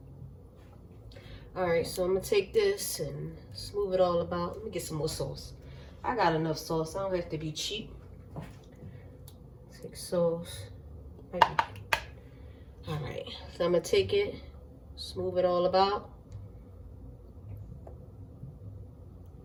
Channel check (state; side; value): identical; both; correlation 1.00